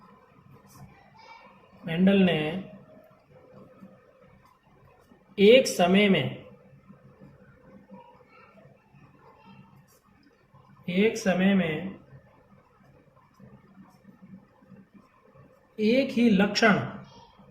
ने एक समय में एक ही लक्षण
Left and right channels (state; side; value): identical; both; correlation 1.00